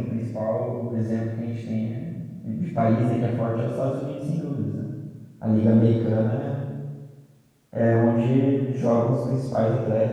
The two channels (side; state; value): both; identical; correlation 1.00